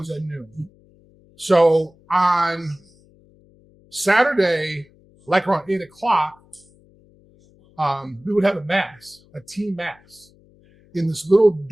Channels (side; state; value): left; noise; hum, 30 dB below the sound